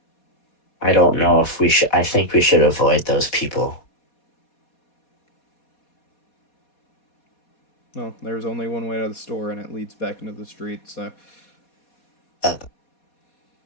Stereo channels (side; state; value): right; late; 4.2 ms